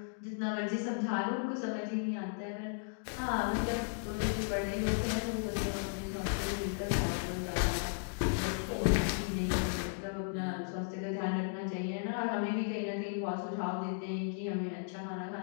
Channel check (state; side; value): silent; right; digital silence